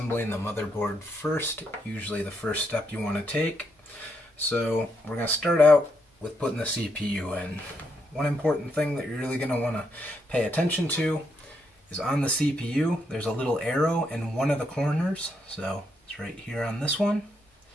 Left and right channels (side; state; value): both; normal; correlation 0.78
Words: the motherboard first. Usually the first step you want to take. So we're going to start out with putting the CPU in. One important thing that you're really going to want to pay attention to is on the CPU there's a little arrow in one of the corners. So it's right here on this one.